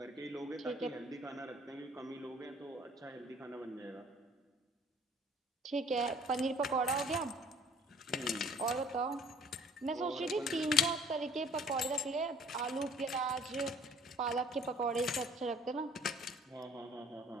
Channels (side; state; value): both; normal; correlation 0.54